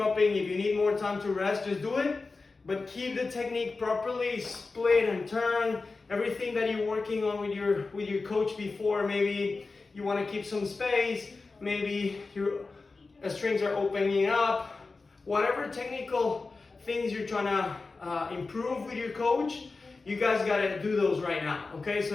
if you need more time to rest, just do it. But keep the technique properly, split and turn. Everything that you're working on with your coach before. Maybe you wanna keep some space. Maybe your strings are opening up. Whatever technical things you're trying to improve with your coach, you guys gotta do those right now, okay?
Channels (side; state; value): right; quieter; 3.9 dB